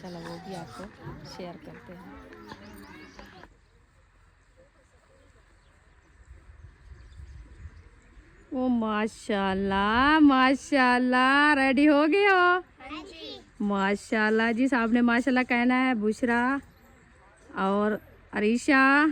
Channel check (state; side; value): identical; both; correlation 1.00